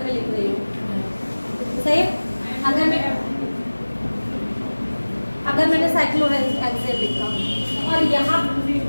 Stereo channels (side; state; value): both; inverted; correlation -1.00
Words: मैं लिख रही हूँ, सही, अगर मैंने साइक्लोहेक्सेन लिखा और यहाँ